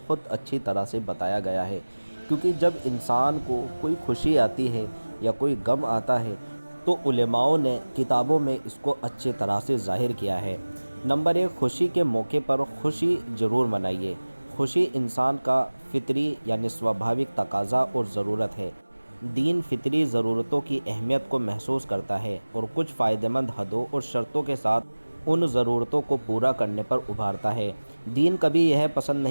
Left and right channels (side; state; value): both; inverted; correlation -1.00